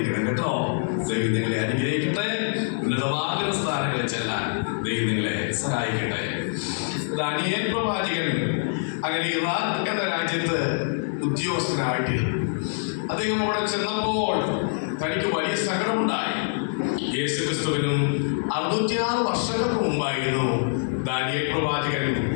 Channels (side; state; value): right; silent; 62 dB below the other